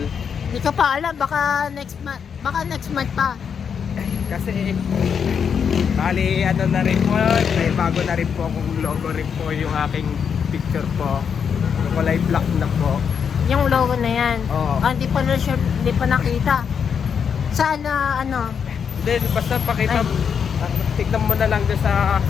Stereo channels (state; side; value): quieter; right; 7.0 dB